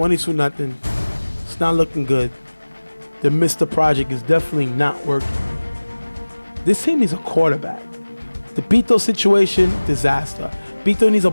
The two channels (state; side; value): inverted; both; correlation -1.00